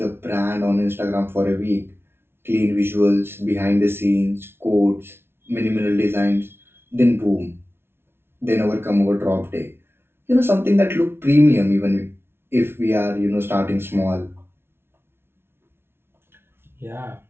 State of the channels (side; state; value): left; late; 0.12 ms